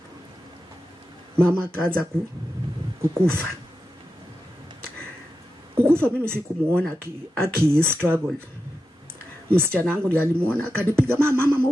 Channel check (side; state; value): both; normal; correlation 0.90